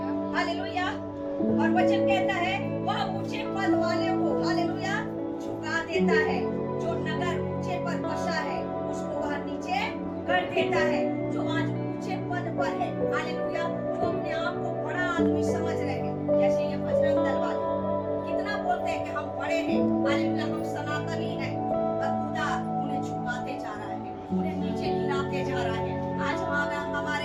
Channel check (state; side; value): identical; both; correlation 1.00